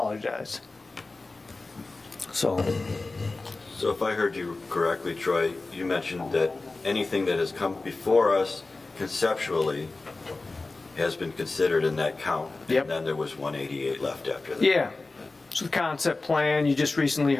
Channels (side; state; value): right; quieter; 3.4 dB